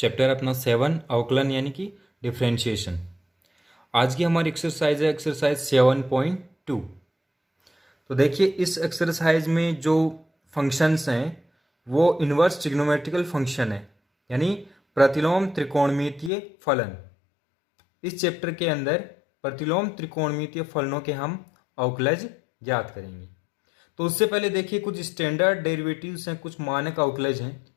अपना 7 अवकलन यानी कि डिफरेंशिएशन। आज की हमारी एक्सरसाइज है एक्सरसाइज 7.2। तो देखिए इस एक्सरसाइज में जो फंक्शंस हैं वो इन्वर्स ट्रिग्नोमेट्रिकल फंक्शन है यानी प्रतिलोम त्रिकोणमितीय फलन। इस चैप्टर के अंदर प्रतिलोम त्रिकोणमितीय फलनों के हम अवकलज ज्ञात करेंगे। तो उससे पहले देखिए कुछ स्टैंडर्ड डेरिवेटिव्स हैं, कुछ मानक अवकलज हैं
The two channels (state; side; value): drops out; right; at 16.3 s